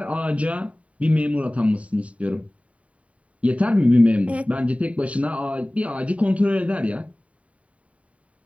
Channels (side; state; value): left; late; 0.066 ms